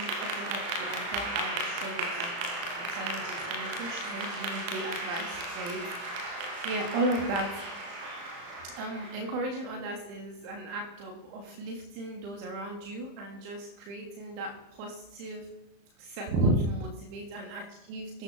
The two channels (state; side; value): late; left; 35 ms